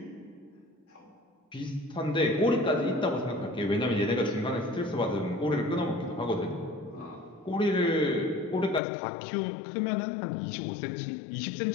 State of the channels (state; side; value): drops out; right; at 8.8 s